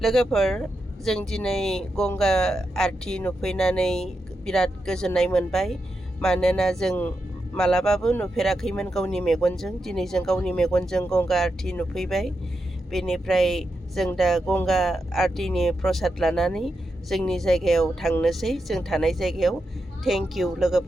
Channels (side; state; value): both; normal; correlation 0.87